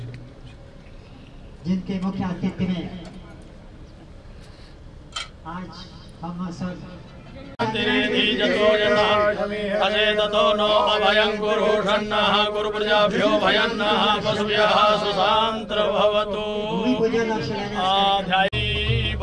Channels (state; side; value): identical; both; correlation 1.00